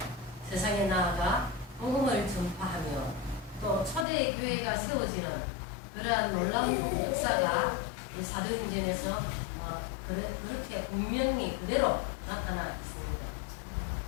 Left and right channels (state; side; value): drops out; right; at 4.0 s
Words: 세상에 나아가 복음을 전파하며 또 초대 교회가 세워지는 그러한 놀라운 역사가 이 사도행전에서 그렇게 분명히 그대로 나타나 있습니다.